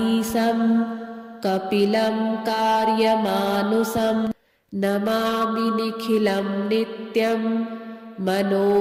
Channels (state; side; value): identical; both; correlation 1.00